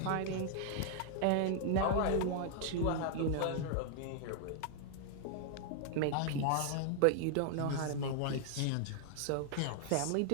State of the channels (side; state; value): both; different; correlation 0.00